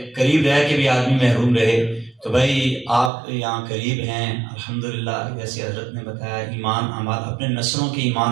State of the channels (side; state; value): left; drops out; at 3.1 s